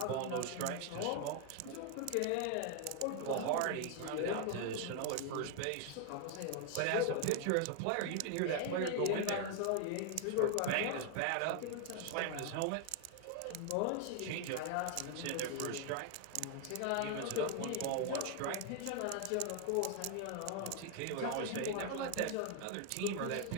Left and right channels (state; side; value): different; both; correlation 0.00